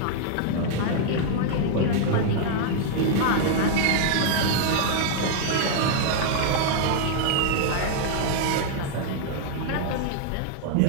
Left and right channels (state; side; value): different; both; correlation 0.00